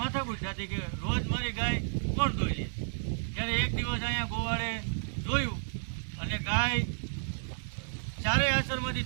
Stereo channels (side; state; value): left; silent; digital silence